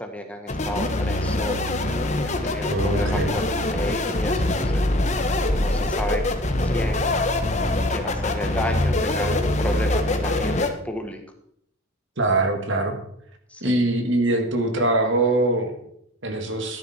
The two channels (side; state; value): both; normal; correlation 0.42